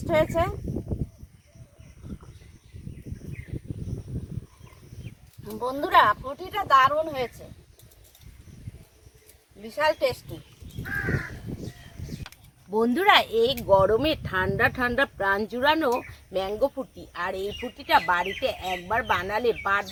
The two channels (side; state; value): both; identical; correlation 1.00